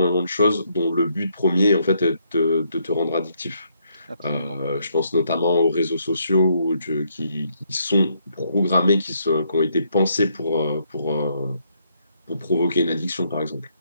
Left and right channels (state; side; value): inverted; both; correlation -0.73